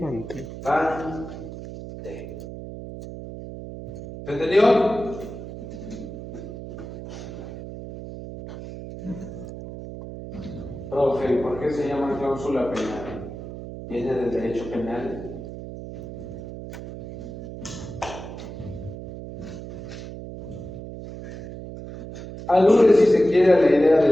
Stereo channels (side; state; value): right; noise; hum, 10 dB below the sound